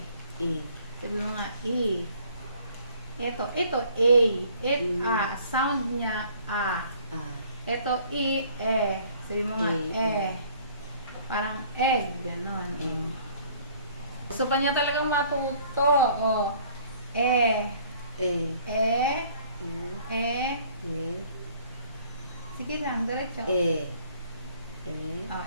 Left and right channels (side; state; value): both; inverted; correlation -0.57